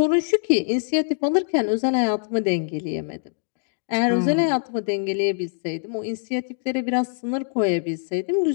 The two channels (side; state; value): right; silent; digital silence